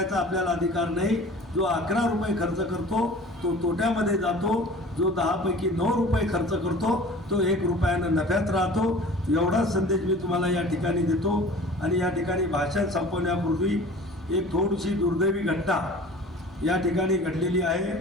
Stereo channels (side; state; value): both; normal; correlation 0.43